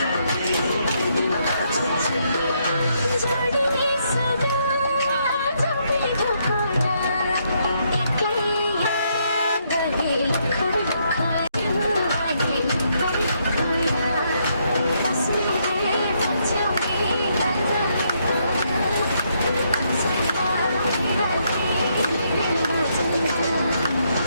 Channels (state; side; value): inverted; both; correlation -0.75